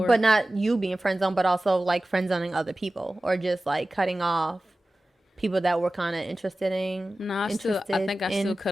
But not you being friend zoned, but also like friend zoning other people, or just like cutting off people that were kind of interested in. No, I think I still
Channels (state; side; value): normal; both; correlation 0.96